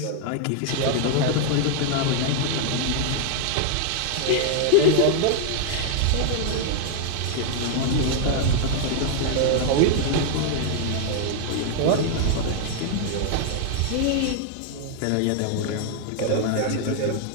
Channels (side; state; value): both; different; correlation 0.00